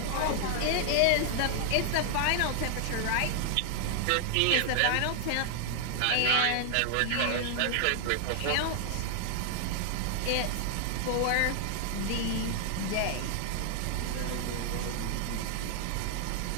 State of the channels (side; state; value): both; different; correlation 0.00